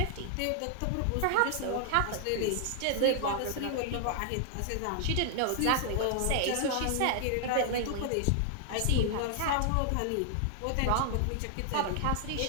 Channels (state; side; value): different; both; correlation 0.00